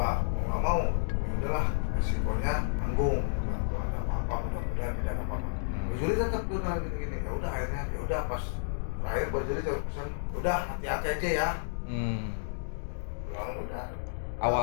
nggak mau. Ya udahlah, resikonya tanggung. Kalau ada apa-apa, mudah-mudahan tidak ada apa-apa. Bajuri tetap udah gini-gini. Ya udah akhirnya, ya udah pas terakhir Bajuri coba pesan, udah hati-hati aja ya. Bilang udah.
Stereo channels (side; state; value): right; silent; digital silence